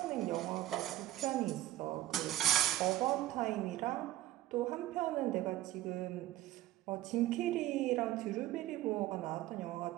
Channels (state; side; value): quieter; left; 14.8 dB